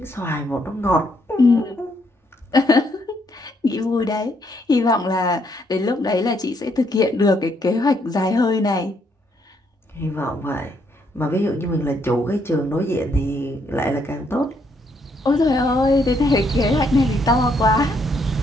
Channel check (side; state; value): both; normal; correlation 0.73